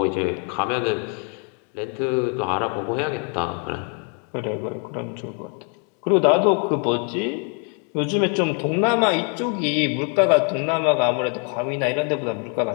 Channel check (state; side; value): quieter; right; 33.6 dB